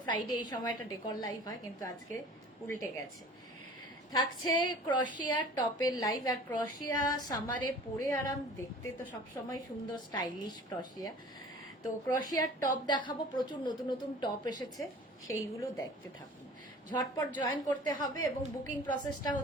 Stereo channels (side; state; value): both; normal; correlation 0.44